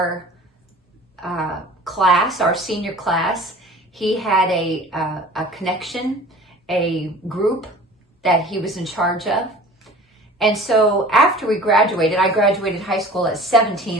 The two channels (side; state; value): both; normal; correlation 0.43